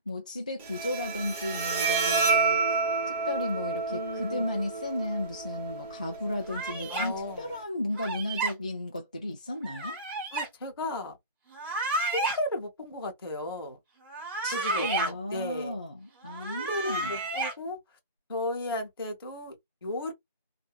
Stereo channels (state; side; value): inverted; both; correlation -0.33